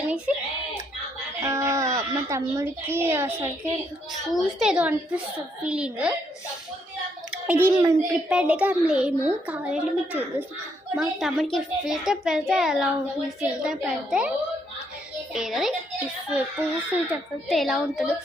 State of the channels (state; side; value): normal; both; correlation 0.74